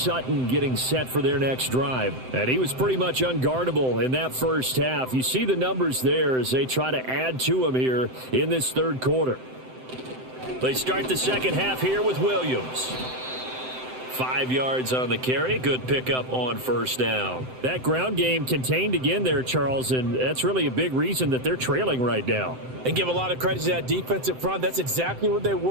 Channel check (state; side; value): late; left; 7.8 ms